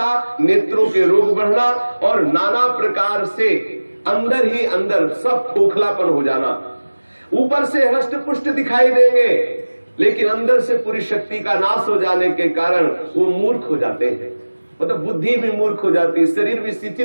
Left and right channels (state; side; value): inverted; both; correlation -1.00